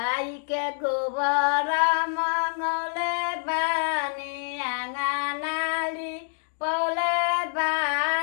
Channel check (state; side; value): silent; right; digital silence